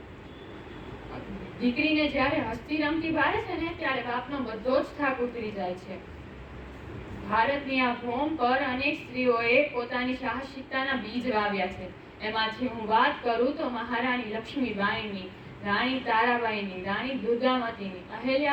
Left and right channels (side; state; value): both; identical; correlation 1.00